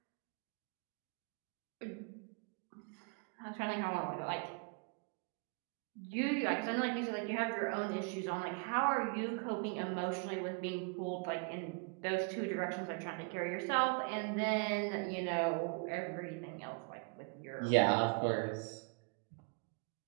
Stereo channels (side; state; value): left; quieter; 34.4 dB